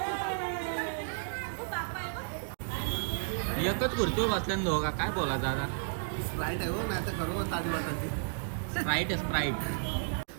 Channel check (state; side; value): silent; left; digital silence